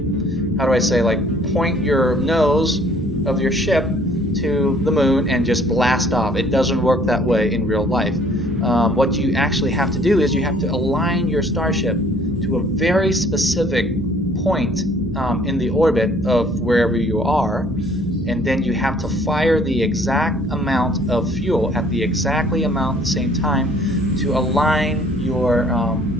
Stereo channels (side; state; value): both; normal; correlation 0.58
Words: point your nose of your ship to the moon and just blast off. It doesn't work that way in real life. What you actually have to do is you have to align your starship to a very specific point in the orbit of wherever you are, and then you have to fire the exact amount of fuel at the same time to align your